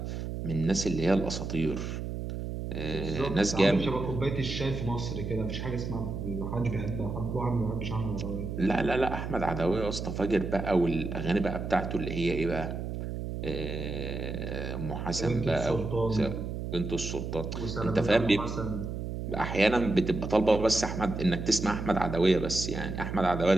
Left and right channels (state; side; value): noise; right; hum, 5 dB below the sound